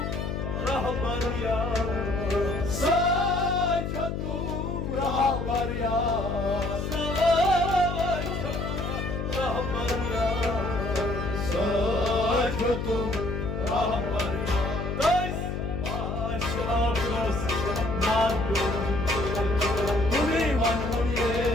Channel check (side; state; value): left; noise; hum, 3 dB below the sound